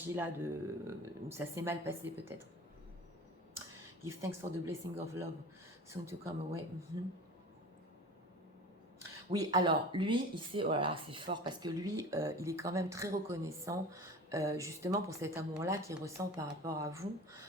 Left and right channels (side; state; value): both; normal; correlation 0.37